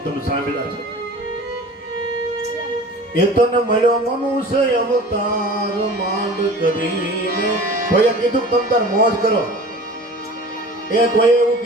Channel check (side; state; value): both; normal; correlation 0.40